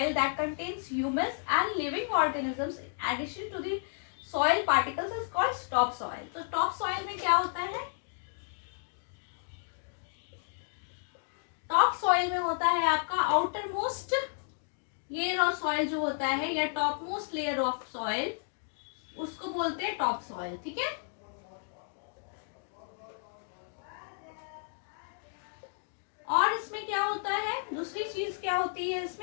that contains humus and living organisms in addition to the soil particles is called top soil. तो टॉप सॉइल में क्या होता है? टॉप सॉइल में होता है आपका outer most layer of soil जो होता है, या top most layer of soil, उसको बोलते हैं टॉप सॉइल। ठीक है, और इसमें क्या होता है? दूसरी चीज क्या होती है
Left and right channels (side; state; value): right; silent; digital silence